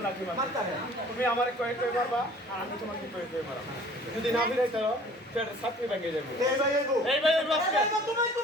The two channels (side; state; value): both; normal; correlation 0.50